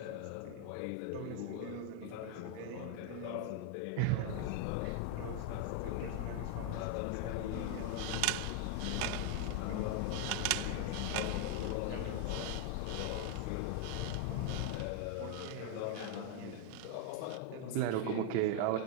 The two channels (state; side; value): different; both; correlation 0.00